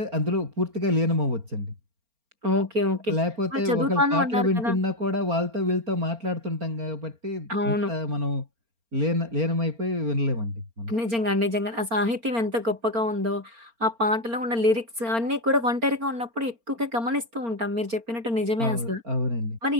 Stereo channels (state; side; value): late; left; 4.4 ms